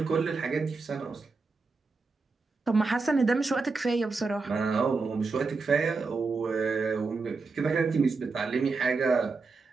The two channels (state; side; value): quieter; left; 4.2 dB